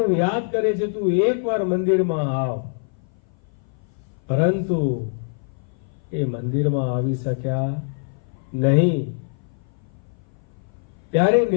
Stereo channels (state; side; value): silent; right; 57 dB below the other